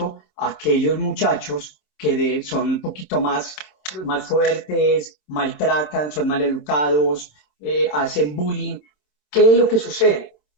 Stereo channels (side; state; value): right; late; 27 ms